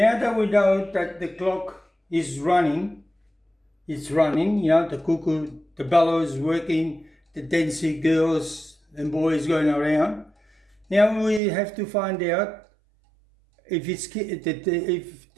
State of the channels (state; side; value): drops out; left; at 11.4 s